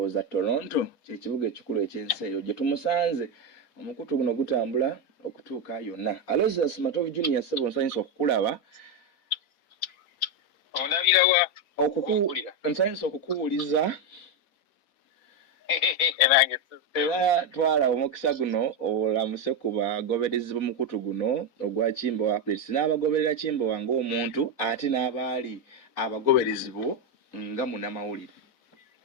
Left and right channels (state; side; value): late; right; 4.1 ms